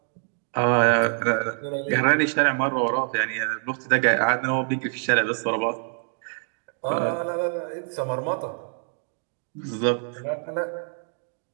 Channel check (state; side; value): silent; left; 61 dB below the other